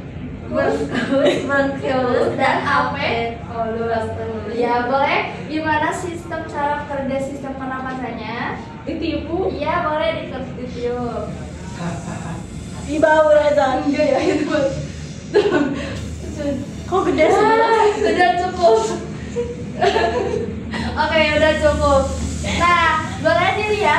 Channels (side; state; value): both; identical; correlation 1.00